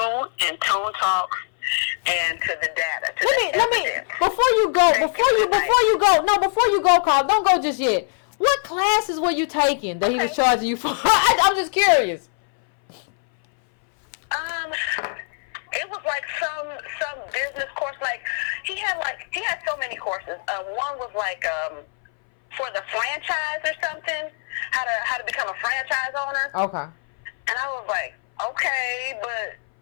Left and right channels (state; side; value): silent; right; 60 dB below the other